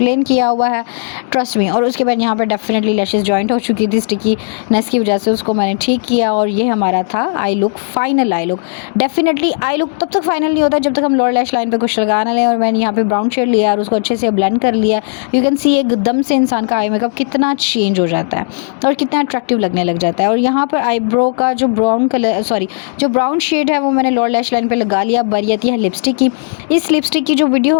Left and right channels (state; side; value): silent; right; digital silence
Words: किया हुआ है, ट्रस्ट मी। और उसके बाद यहाँ पर डेफिनेटली लैशेज़ जॉइंट हो चुकी थी स्टिकीनेस की वजह से, उसको मैंने ठीक किया और ये हमारा था I look, final I look. Definitely I look तब तक फाइनल नहीं होता जब तक हम लोअर लैश लाइन पे कुछ लगा ना लें। और मैंने यहाँ पे ब्राउन शेड लिया और उसको अच्छे से ब्लेंड कर लिया। यू कैन सी एकदम से इंसान का आई मेकअप कितना चेंज हो जाता है और कितना अट्रैक्टिव लगने लग जाता है। और यहाँ पर आईब्रो का जो ब्राउन शेड है वो मैंने लोअर लैश लाइन पे लगा लिया। बारी आती है लिपस्टिक की। इस लिपस्टिक की जो